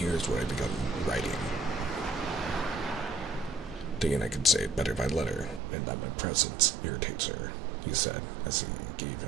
what I begun writing. Thinking I could say it better by letter, and that my presence irritates her, he said, as he gave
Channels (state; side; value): drops out; left; at 5.6 s